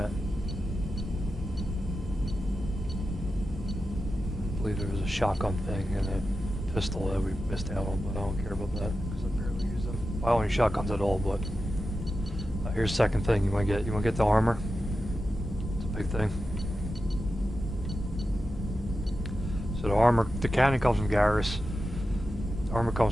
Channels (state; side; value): normal; both; correlation 0.91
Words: I believe there was a shotgun thing and a pistol that we missed out on, but I don't care about that because I barely use them. I don't use shotguns at all, but here's the second thing you want to get. You want to get the armor. It's a big thing. So the armor, the cannon comes from Garrus. The armor